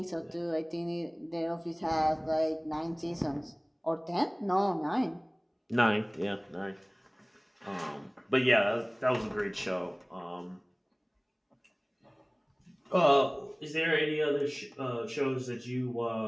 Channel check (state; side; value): identical; both; correlation 1.00